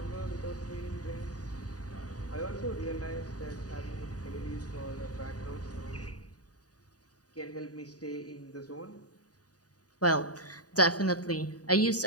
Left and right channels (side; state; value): right; late; 0.68 ms